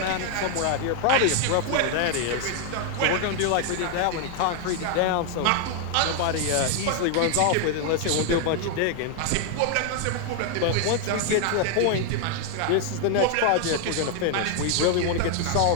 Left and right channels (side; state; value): both; different; correlation 0.00